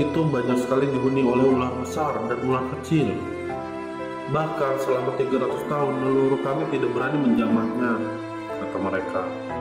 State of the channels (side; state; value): both; identical; correlation 1.00